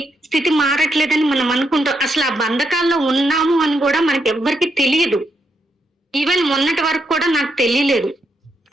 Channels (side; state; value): both; normal; correlation 0.80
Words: స్థితి మారట్లేదని మనం అనుకుంటాం. అసలు ఆ బంధకాల్లో ఉన్నాము అని కూడా మనకి ఎవ్వరికి తెలియదు. ఈవెన్ మొన్నటి వరకు కూడా నాకు తెలియలేదు.